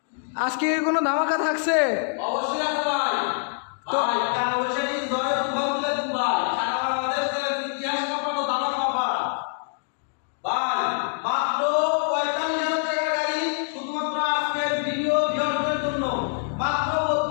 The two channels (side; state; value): right; silent; digital silence